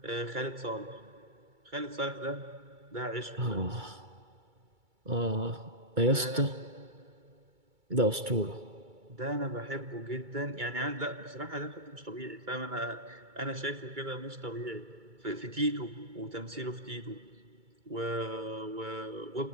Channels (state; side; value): late; left; 2.3 ms